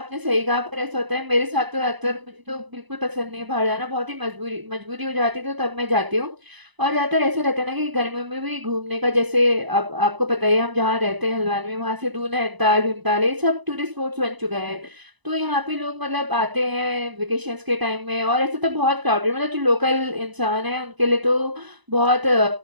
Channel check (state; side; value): late; left; 1.0 ms